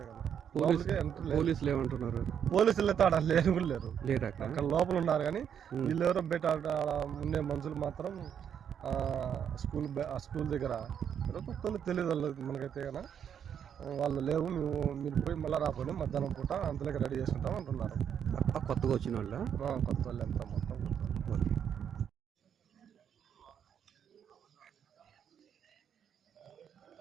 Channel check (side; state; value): left; quieter; 8.4 dB